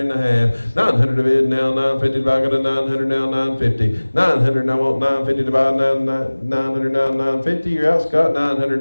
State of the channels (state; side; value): inverted; both; correlation -1.00